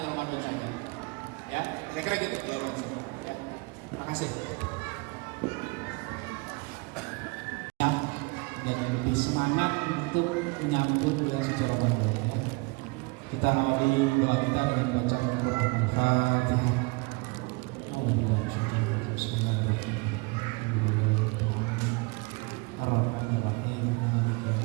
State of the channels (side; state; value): left; quieter; 28.5 dB